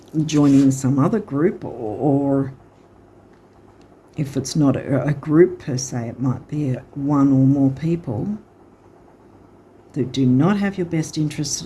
joining some other group, or if it's not a group per se, it might be one or more people that do not have your best interests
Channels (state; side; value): identical; both; correlation 1.00